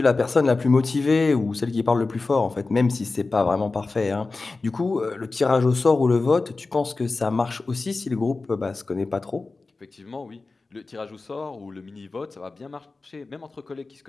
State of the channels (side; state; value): right; quieter; 3.7 dB